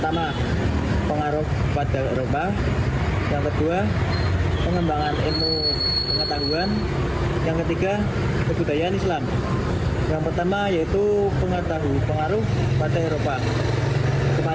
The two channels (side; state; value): both; identical; correlation 1.00